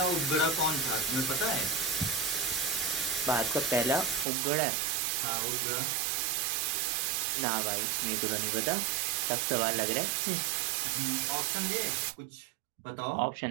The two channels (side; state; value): left; drops out; at 4.2 s